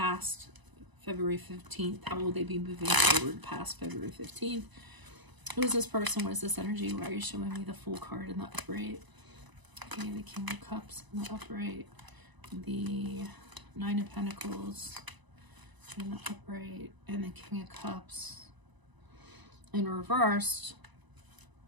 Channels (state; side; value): late; left; 1.0 ms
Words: February 15th. How will they be moving forward past February 15th? Who is this person? What is this energy? Why are you showing me the Fool card in the upright? Okay, the King of Cups in the upright. The Nine of Pentacles in the upright. And the King of Cups in reversed.